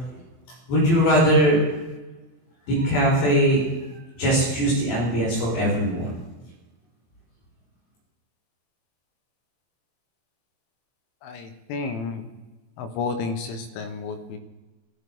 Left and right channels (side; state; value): right; late; 24 ms